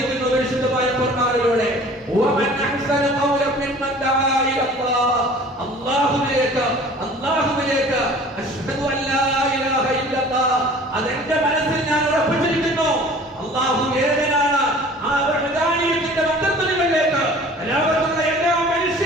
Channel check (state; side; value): normal; both; correlation 0.47